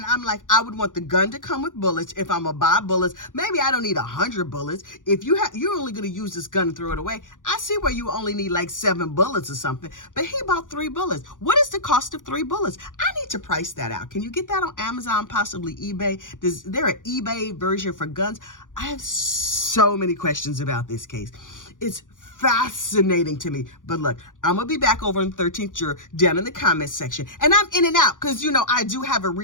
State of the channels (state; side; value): late; right; 0.88 ms